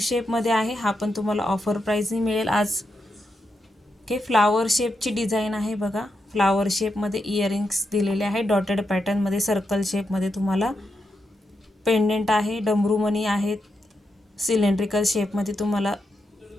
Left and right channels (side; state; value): both; normal; correlation 0.85